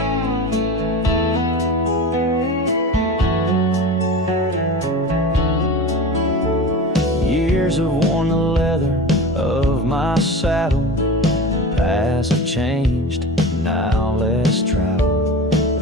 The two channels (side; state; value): both; normal; correlation 0.32